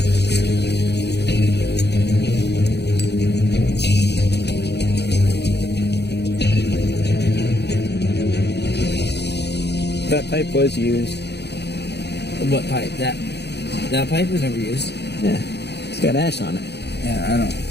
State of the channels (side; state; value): right; late; 0.49 ms